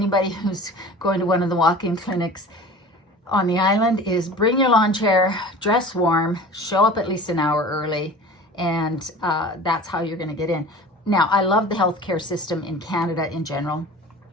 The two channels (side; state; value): both; normal; correlation 0.40